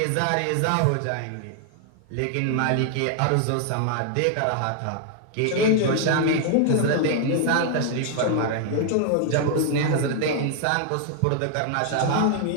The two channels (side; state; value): both; different; correlation 0.00